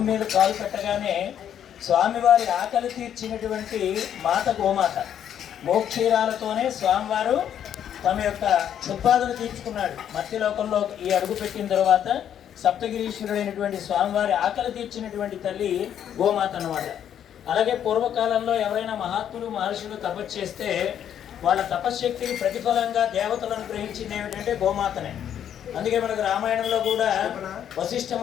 మీద కాలు పెట్టగానే స్వామివారి ఆకలి తీర్చినటువంటి మాత గోమాత. మోక్షీరాలతోనే స్వామివారు తమ యొక్క క్షుద్బాధను తీర్చుకున్నాడు. మత్స్యలోకంలో ఈ అడుగు పెట్టిన తర్వాత సప్తగిరీశ్వరుడైనటువంటి స్వామివారి ఆకలి తీర్చినటువంటి తల్లి గోమాత అన్నమాట. అలాగే పూర్వకాలంలో ఎవరైనా మహాత్ములు మహర్షులు తపస్సు చేస్తే వాళ్ళ తపశ్శక్తికి ప్రతిఫలంగా దేవతలు అనుగ్రహించింది ఏమిటంటే గోమాతనే. అందుకే మనకు రామాయణంలో కూడా వశిష్ఠ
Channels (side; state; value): right; quieter; 9.6 dB